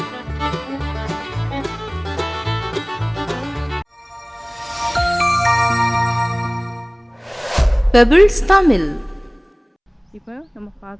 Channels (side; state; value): both; identical; correlation 1.00